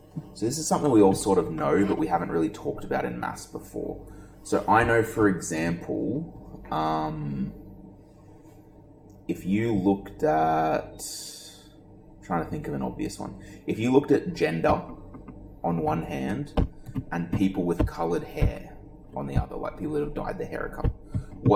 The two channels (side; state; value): both; identical; correlation 1.00